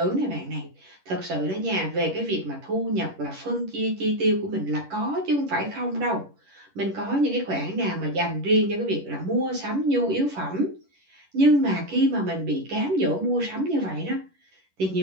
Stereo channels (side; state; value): left; late; 11 ms